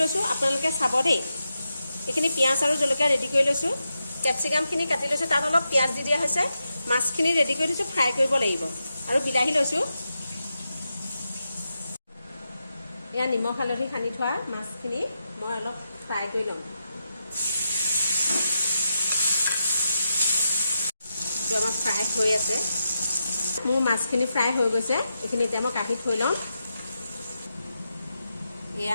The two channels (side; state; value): both; inverted; correlation -0.87